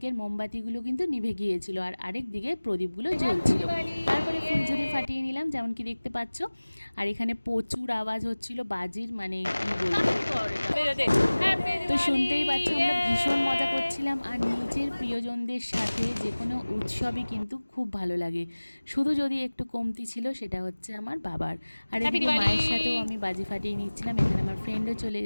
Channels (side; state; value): both; inverted; correlation -1.00